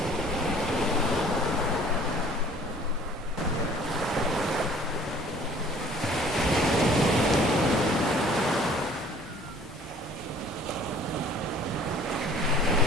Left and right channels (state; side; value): normal; both; correlation 0.52